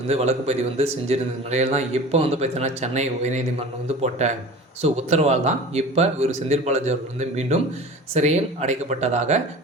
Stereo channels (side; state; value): both; normal; correlation 0.38